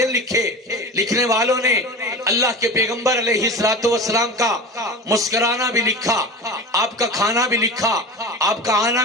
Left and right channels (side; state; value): both; normal; correlation 0.31